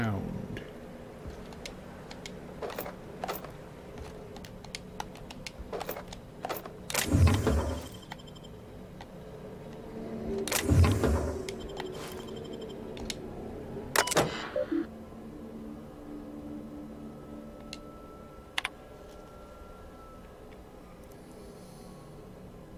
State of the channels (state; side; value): identical; both; correlation 1.00